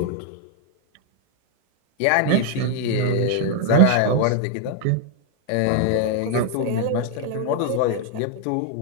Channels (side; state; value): both; different; correlation 0.00